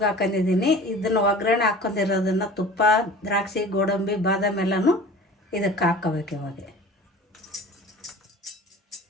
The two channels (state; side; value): normal; both; correlation 0.41